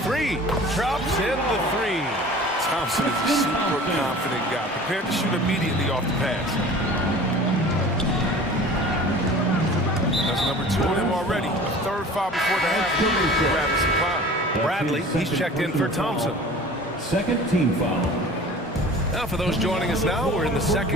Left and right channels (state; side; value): normal; both; correlation 0.42